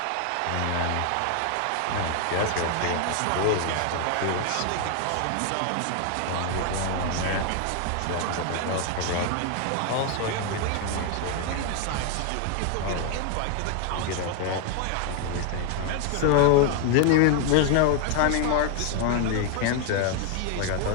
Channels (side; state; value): both; different; correlation 0.00